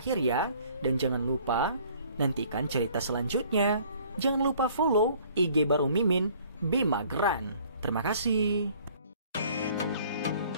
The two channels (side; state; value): both; inverted; correlation -0.56